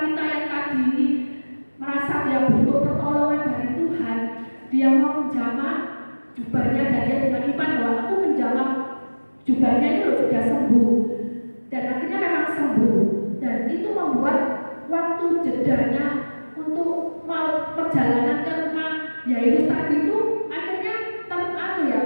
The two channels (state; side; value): inverted; both; correlation -1.00